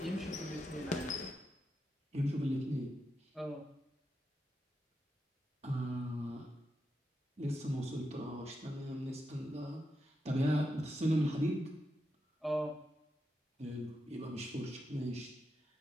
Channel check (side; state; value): both; normal; correlation 0.86